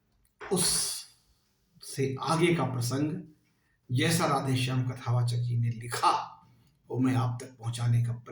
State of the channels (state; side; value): identical; both; correlation 1.00